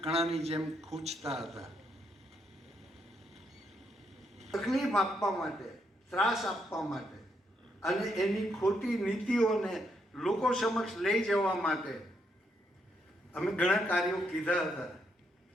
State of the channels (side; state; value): both; normal; correlation 0.77